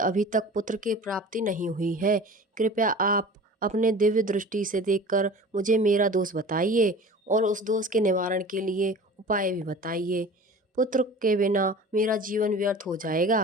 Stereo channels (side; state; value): both; normal; correlation 0.40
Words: तक पुत्र की प्राप्ति नहीं हुई है। कृपया आप अपने दिव्य दृष्टि से देखकर मुझे मेरा दोष बताइए और उस दोष के निवारण के लिए उपाय भी बताइए। पुत्र के बिना मेरा जीवन व्यर्थ हो